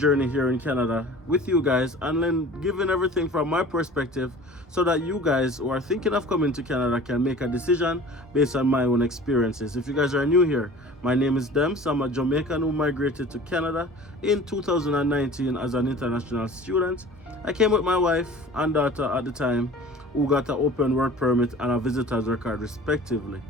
here in Canada with you guys and then giving everything from my perspective so that you guys who are thinking of coming to Canada can make a decision based on my own experiences. If you guys are new here, my name is Dems. I'm a Jamaican who migrated to Canada in 2019 as an international student. I came with my wife and daughter at the time, who got an open work permit and a visitor's record respectively.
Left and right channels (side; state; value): both; normal; correlation 0.43